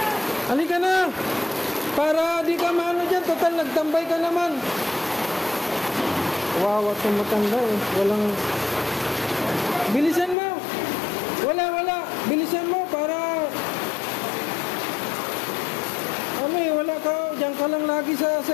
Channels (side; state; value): right; drops out; at 10.4 s